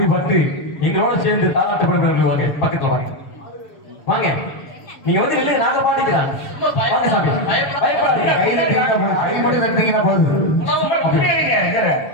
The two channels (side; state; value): right; late; 7.3 ms